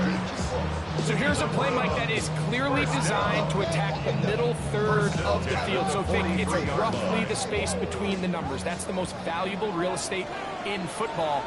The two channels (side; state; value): both; identical; correlation 1.00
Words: So here's a play, Mike, that is clearly designed to attack the middle 3rd of the field. So think it's roughly the space between the numbers. That's the most valuable real estate in football.